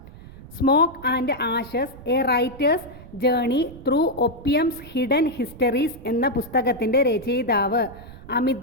Smoke and ashes a writer's journey through opium's hidden histories എന്ന പുസ്തകത്തിൻ്റെ രചയിതാവ്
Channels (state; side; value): noise; right; rumble, 18 dB below the sound